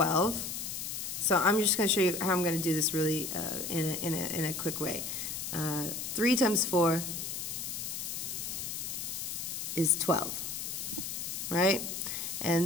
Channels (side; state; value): left; noise; hiss, 5 dB below the sound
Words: So I'm just going to show you how I'm going to do this really in a quick way. 3 times 4 is 12. Right?